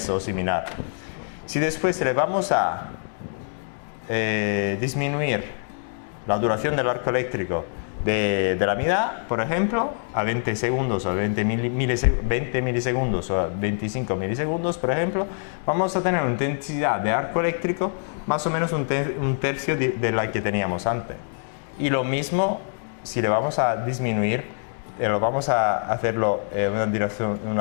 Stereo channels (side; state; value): right; silent; digital silence